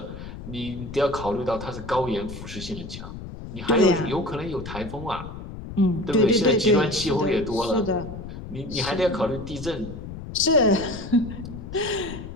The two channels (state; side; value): noise; left; rumble, 11 dB below the sound